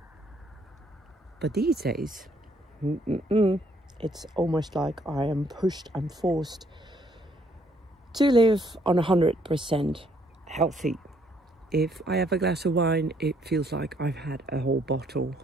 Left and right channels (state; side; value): normal; both; correlation 0.68